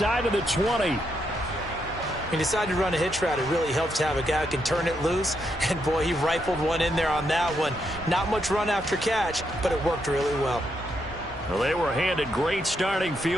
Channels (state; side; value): normal; both; correlation 0.79